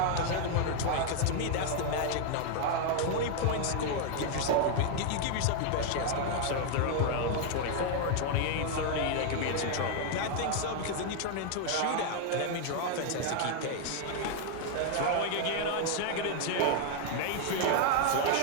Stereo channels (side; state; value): both; different; correlation 0.00